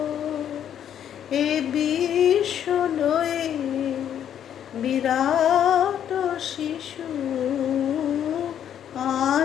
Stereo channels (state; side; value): quieter; right; 9.7 dB